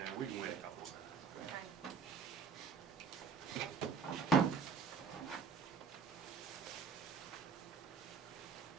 we can wait a couple of minutes. Okay.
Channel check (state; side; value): quieter; left; 5.6 dB